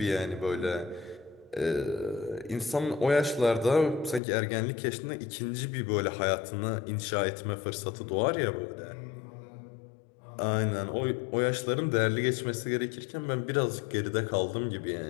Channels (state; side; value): drops out; right; at 4.2 s